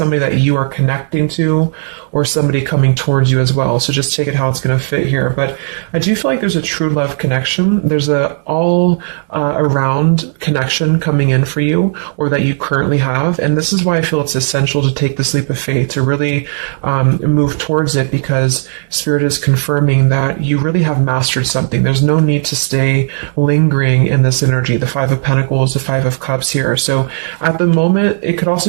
that you are connecting to or somebody coming towards you as well. So just take it how it's going to fit here. But I do feel like there's a true love connection. There's a all around connection coming in for you, or that you currently have. And this is why I feel it's essential to take this leap of faith, to really move towards it, because Spirit is confirming that you really have mastered something. There's no need to stay lingering in this energy, the Five of Pentacles, the Five of Cups here. So at the moment, it could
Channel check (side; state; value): left; silent; 57 dB below the other